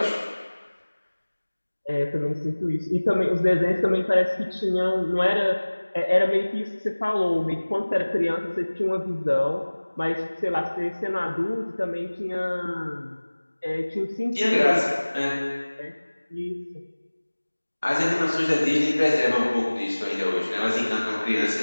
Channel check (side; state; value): both; inverted; correlation -1.00